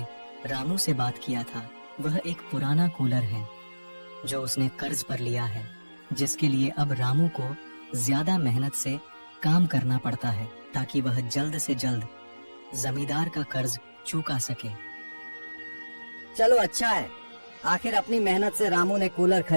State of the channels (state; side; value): inverted; both; correlation -1.00